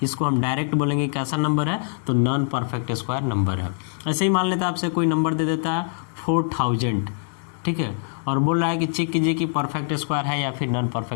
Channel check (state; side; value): silent; right; digital silence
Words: इसको हम डायरेक्ट बोलेंगे कैसा नंबर है, तो नॉन परफेक्ट स्क्वायर नंबर है। ऐसे ही मान लेते हैं आपसे कोई नंबर दे देता है 4000, ठीक है, और बोल रहा है कि चेक कीजिए कि परफेक्ट स्क्वायर है या फिर नॉन